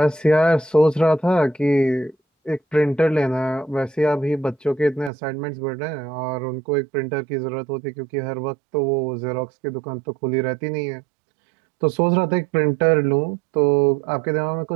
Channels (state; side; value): drops out; left; at 5.1 s